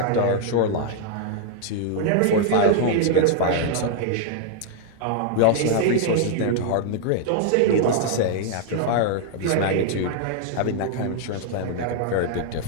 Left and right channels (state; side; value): different; both; correlation 0.00